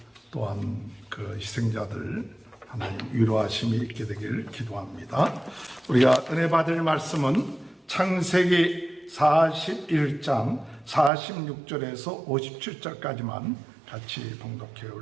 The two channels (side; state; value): left; drops out; at 11.1 s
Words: 또한 그 희생자들 하나님 위로하심이 있게 되길 기도합니다. 우리가 은혜 받을 말씀은 창세기 41장 46절에서 57절까지만 같이 봉독해